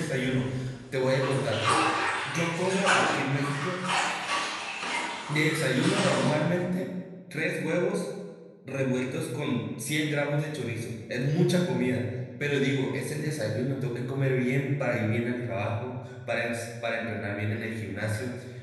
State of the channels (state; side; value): identical; both; correlation 1.00